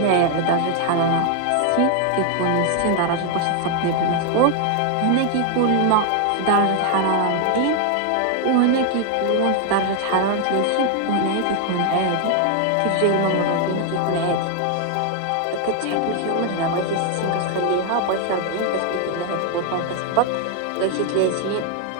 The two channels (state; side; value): different; both; correlation 0.00